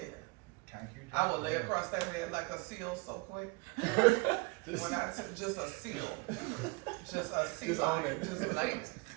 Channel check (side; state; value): left; quieter; 26.9 dB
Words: Concrete I will lay jungle. across that bed like a seal so quick. Just, When I just a seal. Just a seal. Just own it. Just like,